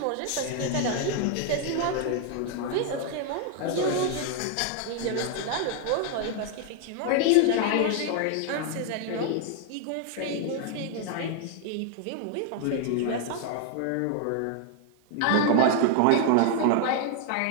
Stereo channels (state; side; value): different; both; correlation 0.00